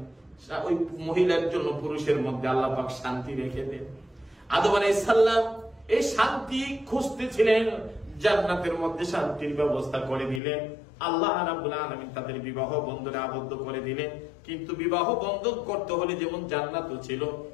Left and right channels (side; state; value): right; drops out; at 10.4 s